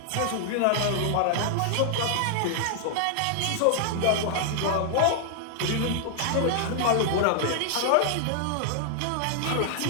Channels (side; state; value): both; different; correlation 0.00